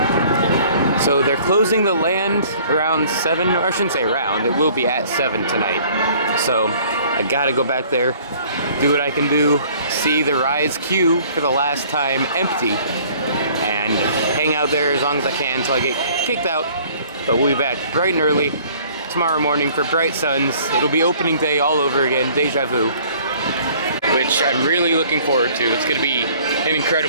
So they're closing the land around 7, or I shouldn't say around, it will be at 7 tonight. So I gotta go back there, do what I can do, see the Rise queue for the last time empty, and hang out there as long as I can until I get kicked out. But we'll be back bright and early tomorrow morning for bright suns. It'll be opening day all over again, deja vu, which I'm really looking forward to. It's gonna be an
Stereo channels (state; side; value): inverted; both; correlation -0.54